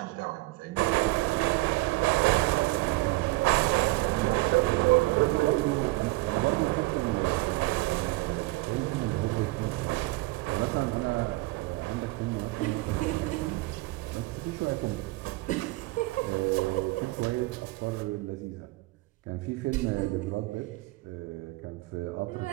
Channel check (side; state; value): left; quieter; 21.4 dB